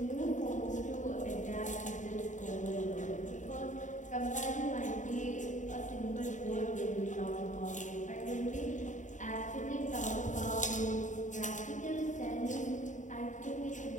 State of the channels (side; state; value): right; late; 0.36 ms